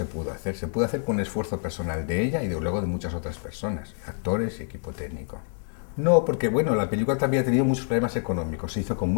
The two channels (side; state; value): right; silent; digital silence